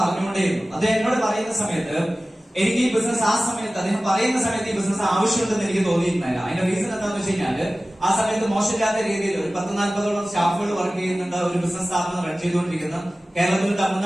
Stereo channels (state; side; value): normal; both; correlation 0.97